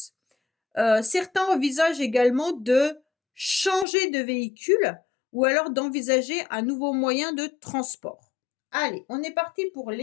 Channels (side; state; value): right; drops out; at 3.9 s